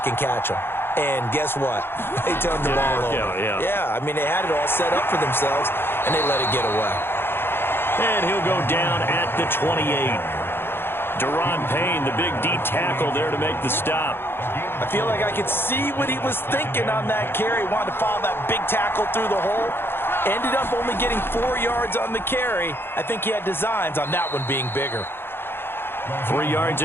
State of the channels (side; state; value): right; late; 0.11 ms